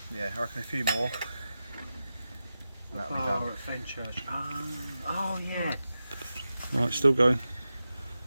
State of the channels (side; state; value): both; inverted; correlation -0.92